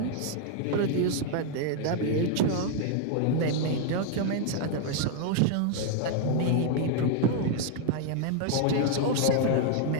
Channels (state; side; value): different; both; correlation 0.00